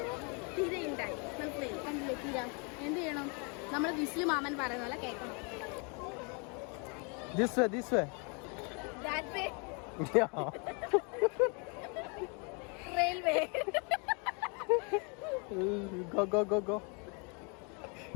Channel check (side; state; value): right; quieter; 34.5 dB